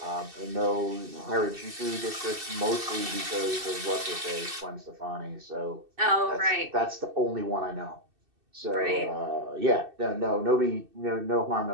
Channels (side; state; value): left; late; 2.6 ms